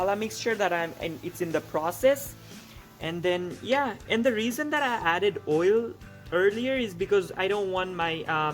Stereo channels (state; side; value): identical; both; correlation 1.00